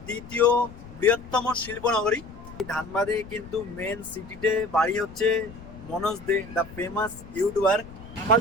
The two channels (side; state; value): left; noise; rumble, 17 dB below the sound